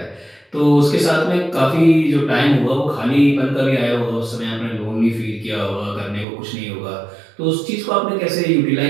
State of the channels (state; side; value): drops out; left; at 6.2 s